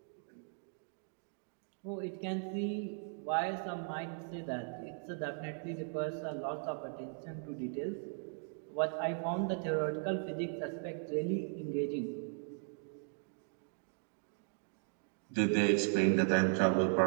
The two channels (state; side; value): silent; left; 53 dB below the other